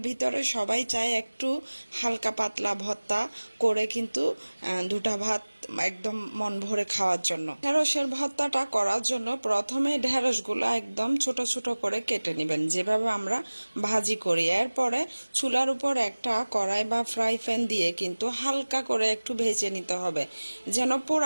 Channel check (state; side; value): inverted; both; correlation -1.00